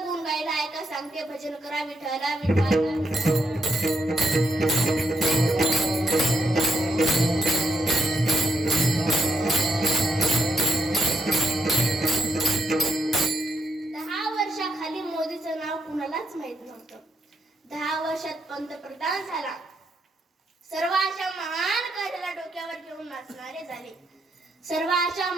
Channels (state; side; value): normal; both; correlation 0.79